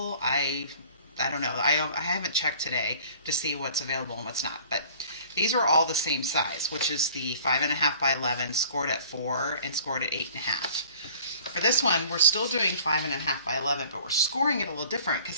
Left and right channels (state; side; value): inverted; both; correlation -0.50